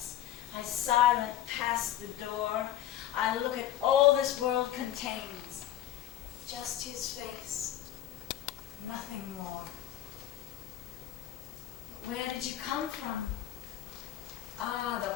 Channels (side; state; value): right; quieter; 12.4 dB